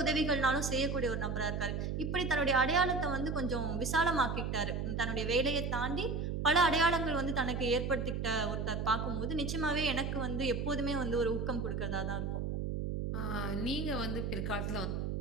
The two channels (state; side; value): noise; right; hum, 2 dB below the sound